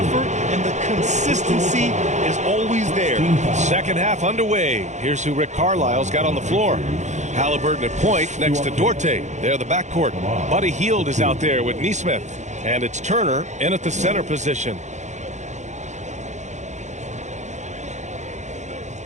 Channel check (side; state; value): left; late; 0.34 ms